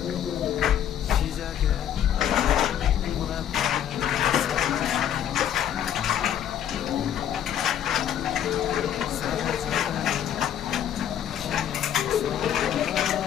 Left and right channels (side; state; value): right; quieter; 10.1 dB